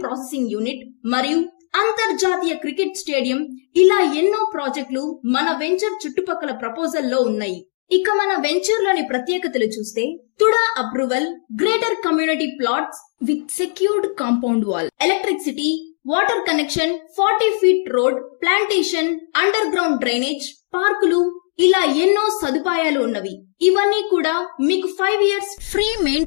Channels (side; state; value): right; silent; digital silence